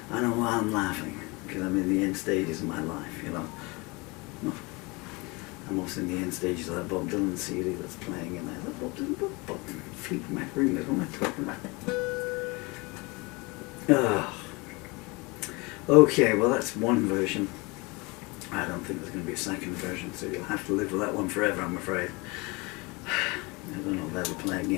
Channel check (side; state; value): right; quieter; 26.3 dB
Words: I know why I'm laughing, because I'm in the end stages of my life, you know. I'm also in the end stages of that Bob Dylan CD that's playing in there. That Bob Dylan, Bob Fleetwood Mac Ringers, what am I talking about? Okay, well that's one version. I don't think there's going to be a second version, so you'll have to live with that one forever, I'm afraid. I don't know if they'll play